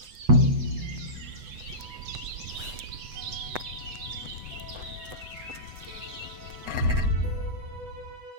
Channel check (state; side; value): late; left; 8.0 ms